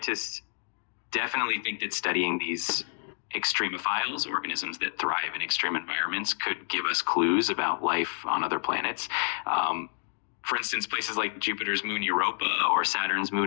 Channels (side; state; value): right; silent; digital silence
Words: definitely think that studying these extremophiles, organisms that thrive in extreme environments, could give us clues about life on other planets. For instance, places like Jupiter's moon Europa or Saturn's